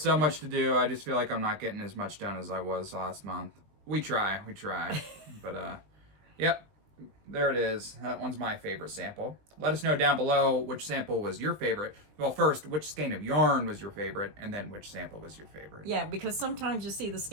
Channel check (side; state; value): left; late; 20 ms